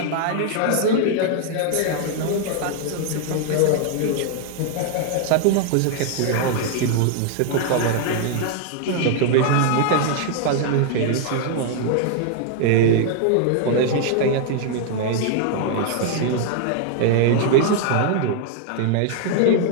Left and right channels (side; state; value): both; different; correlation 0.00